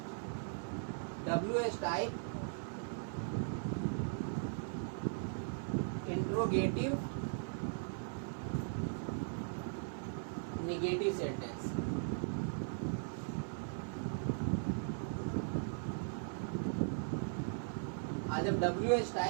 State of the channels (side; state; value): left; silent; 52 dB below the other